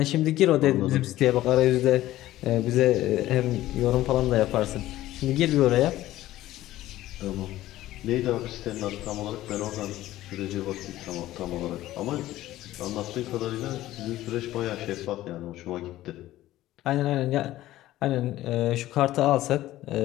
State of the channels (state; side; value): quieter; right; 15.2 dB